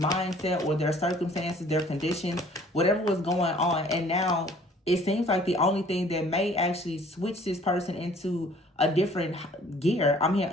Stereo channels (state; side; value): normal; both; correlation 0.55